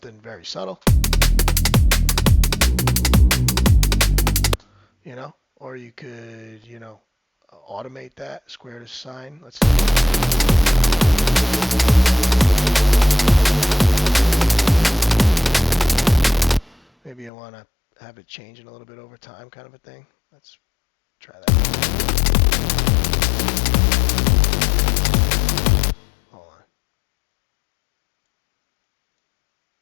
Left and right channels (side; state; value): right; drops out; at 17.3 s